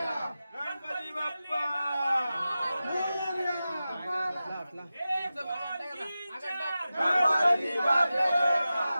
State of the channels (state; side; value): inverted; both; correlation -0.94